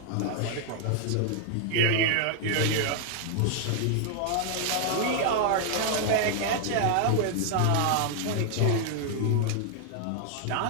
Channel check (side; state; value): both; different; correlation 0.00